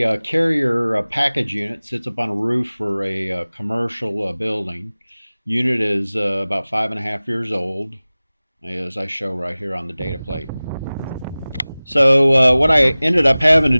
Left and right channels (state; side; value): inverted; both; correlation -0.99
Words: carrier package unit. Sits up on a roof for a commercial building. Unit is about 5.5 years old, as I show right here on the data plate. So what I ended up having to